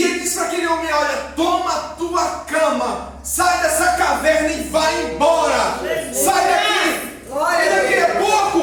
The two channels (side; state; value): both; identical; correlation 1.00